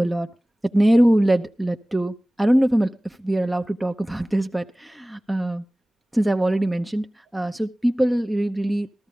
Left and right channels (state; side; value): normal; both; correlation 0.98